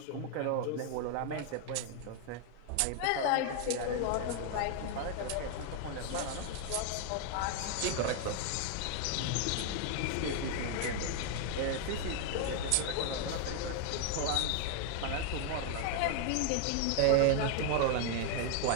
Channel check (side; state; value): both; different; correlation 0.00